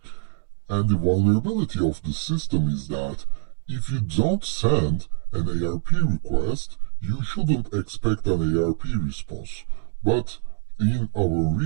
And the vulnerability of the system is that if you don't send an ARP request, you shouldn't expect an ARP response. But in our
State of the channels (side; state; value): left; silent; digital silence